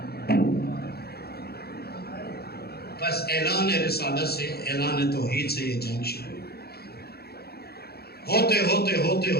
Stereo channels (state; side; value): late; right; 0.46 ms